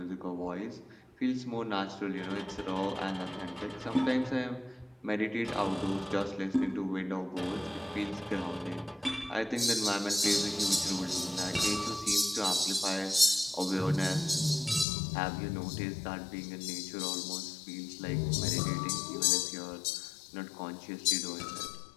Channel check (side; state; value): right; drops out; at 14.9 s